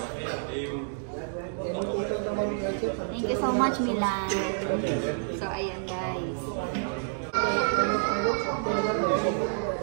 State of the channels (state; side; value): silent; left; digital silence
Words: Thank you so much, Milan. So, ayan guys.